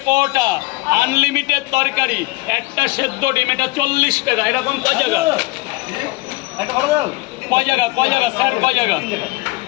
পরোটা, আনলিমিটেড তরকারি, একটা সেদ্ধ ডিম, এটা 40 টাকা। এরকম কয় জায়গা? একটা পরোটা দাও। কয় জায়গা স্যার, কয় জায়গা?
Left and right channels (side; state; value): right; quieter; 22.7 dB